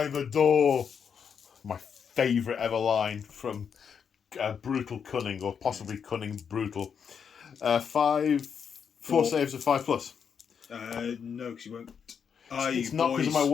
a door. My favourite ever line from Brutal Cunning, or possibly Cunning Brutal. 4 saves of 5+. No, because you won't. It's not because of my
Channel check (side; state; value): right; quieter; 7.0 dB